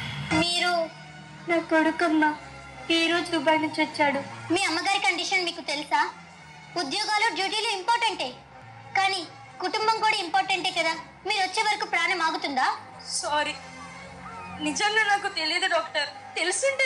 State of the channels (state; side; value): identical; both; correlation 1.00